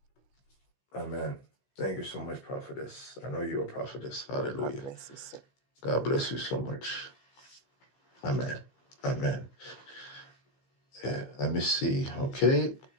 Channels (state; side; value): late; right; 15 ms